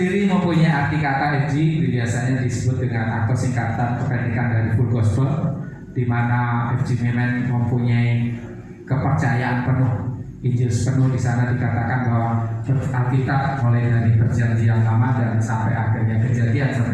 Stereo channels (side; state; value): both; identical; correlation 1.00